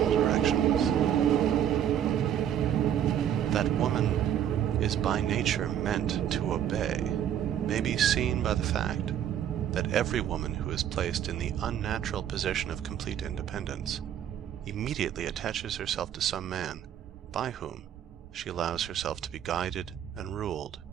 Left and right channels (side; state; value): left; quieter; 10.0 dB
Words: directions. That woman is by nature meant to obey may be seen by the fact that every woman who is placed in the unnatural position of complete independence immediately attaches herself to some man by whom she allows herself to be guided and ruled.